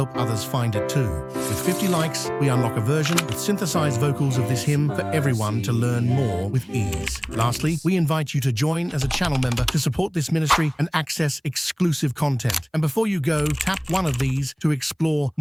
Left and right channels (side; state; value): both; identical; correlation 1.00